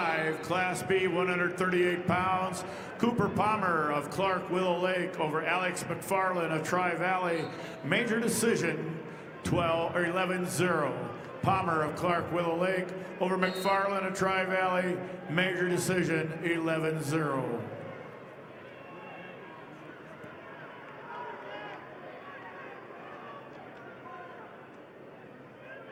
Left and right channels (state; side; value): identical; both; correlation 1.00